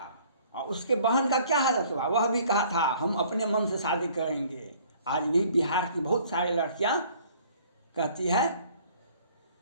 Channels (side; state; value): both; inverted; correlation -0.56